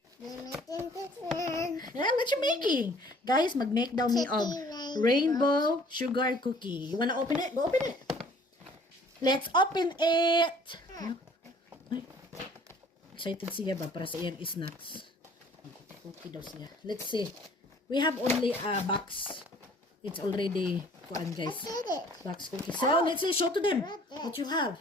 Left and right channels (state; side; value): normal; both; correlation 0.54